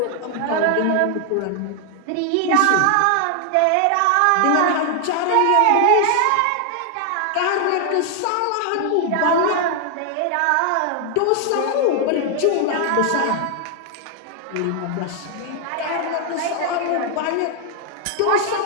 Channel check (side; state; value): both; different; correlation 0.00